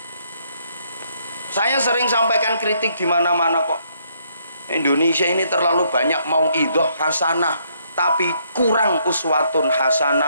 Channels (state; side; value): inverted; both; correlation -0.70